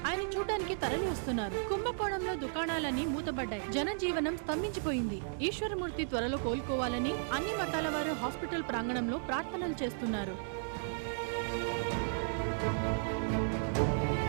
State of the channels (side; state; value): left; silent; digital silence